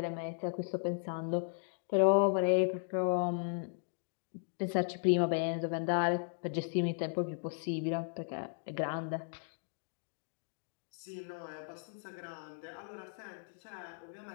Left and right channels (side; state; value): right; silent; digital silence